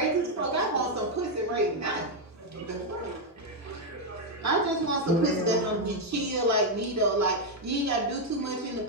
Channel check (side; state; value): both; normal; correlation 0.01